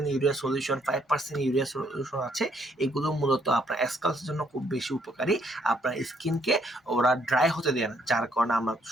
urea solution, 5% urea solution আছে। এগুলো মূলত আপনার স্কালসের জন্য খুব বেশি উপকারী। আপনার স্কিনকে ওরা ড্রাই হতে দেয় না, যার কারণে আমরা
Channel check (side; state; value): both; normal; correlation 0.69